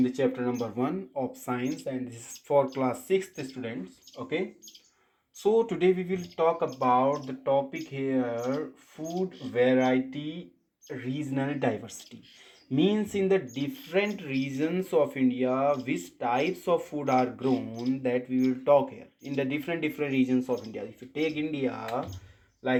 the chapter number 1 of science, and this is for class 6th students. Okay. So today we will talk about the topic here: food variety, regional diversity. Means in the different regions of India, which types of food are grown, that we will talk here. In the different regions of India. If you take India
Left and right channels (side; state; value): both; identical; correlation 1.00